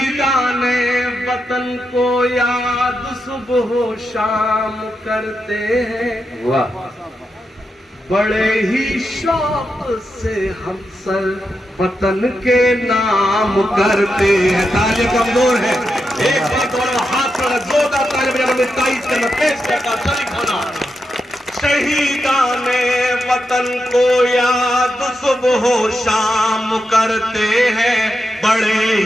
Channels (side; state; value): both; normal; correlation 0.86